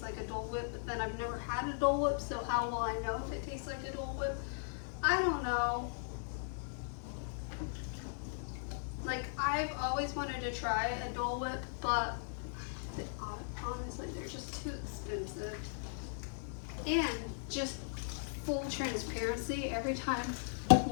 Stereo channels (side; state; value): right; silent; 52 dB below the other